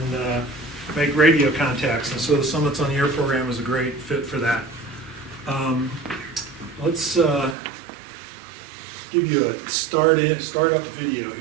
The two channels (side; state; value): left; drops out; at 7.6 s